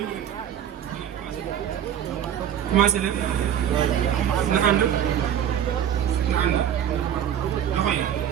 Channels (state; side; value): quieter; left; 9.7 dB